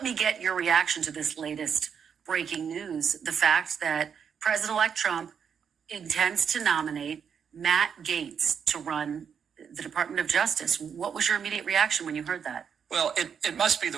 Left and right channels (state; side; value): quieter; left; 7.2 dB